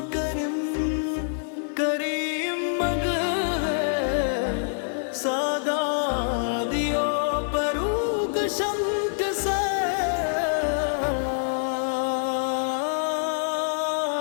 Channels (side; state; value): right; silent; 58 dB below the other